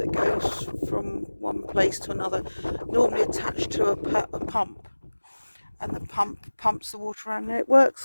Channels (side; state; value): both; inverted; correlation -1.00